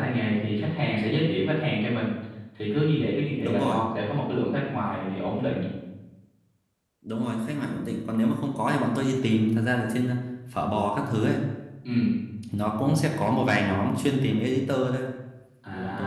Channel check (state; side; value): identical; both; correlation 1.00